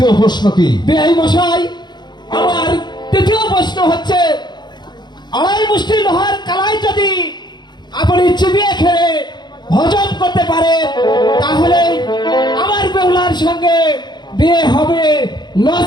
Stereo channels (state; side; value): late; right; 0.21 ms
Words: প্রশ্ন কি? বেআই মশাই, আমার তৃতীয় প্রশ্ন হচ্ছে, আড়াই মুষ্টি লোহার কালাই যদি আপনি চিবিয়ে খেয়ে হজম করতে পারেন তাহলে আমার বেহুলার সঙ্গে বিয়ে হবে,